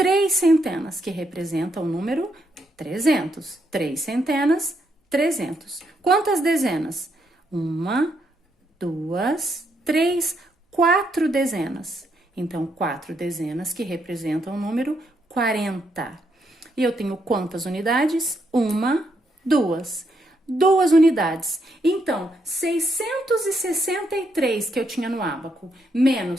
centenas, que representam o número 300. 3 centenas, 300. Quantas dezenas? 1, 2, 3, 4 dezenas. Então, 4 dezenas, que representam o número 40. E eu tenho quantas unidades? 1, 2. 2 unidades. Então, 663 que eu tinha no ábaco,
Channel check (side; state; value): both; normal; correlation 0.77